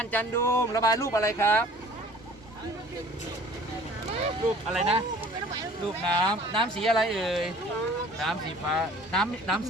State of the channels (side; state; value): both; normal; correlation 0.50